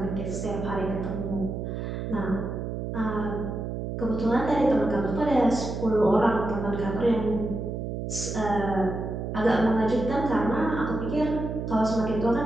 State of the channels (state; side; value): noise; right; hum, 4 dB below the sound